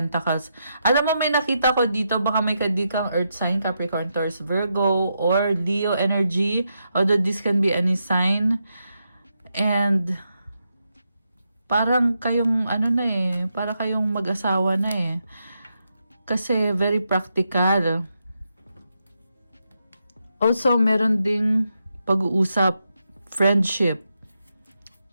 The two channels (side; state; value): both; inverted; correlation -0.83